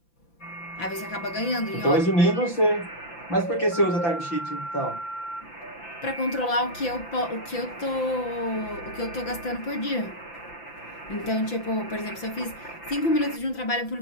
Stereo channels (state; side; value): late; right; 5.9 ms